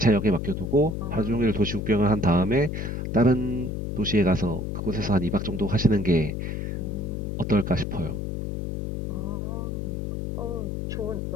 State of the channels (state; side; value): noise; left; hum, 3 dB below the sound